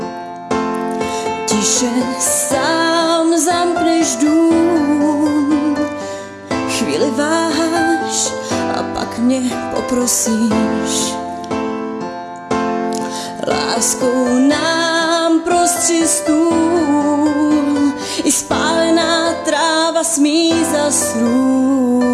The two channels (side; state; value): both; identical; correlation 1.00